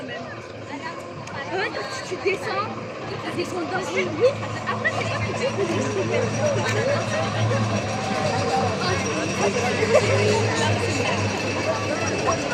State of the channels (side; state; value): both; identical; correlation 1.00